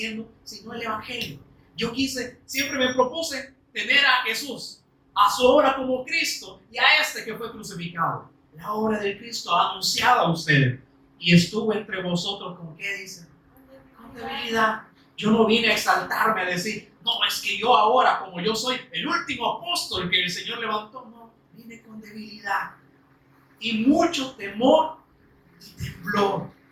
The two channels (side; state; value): both; identical; correlation 1.00